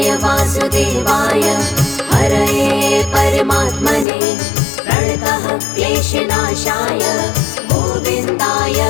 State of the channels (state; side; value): drops out; right; at 4.0 s